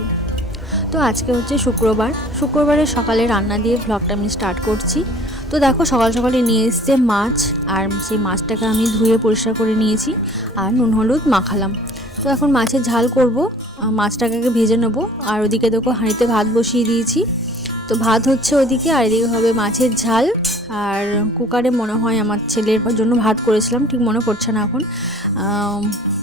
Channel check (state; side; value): normal; both; correlation 0.51